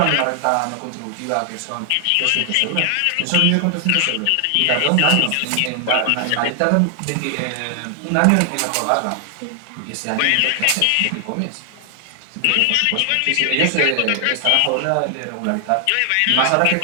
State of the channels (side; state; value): both; different; correlation 0.00